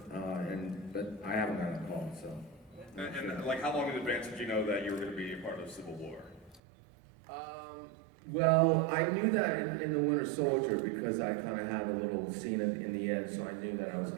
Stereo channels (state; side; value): drops out; left; at 6.6 s